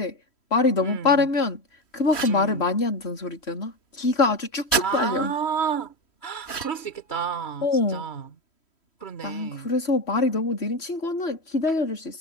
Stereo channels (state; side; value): late; right; 3.1 ms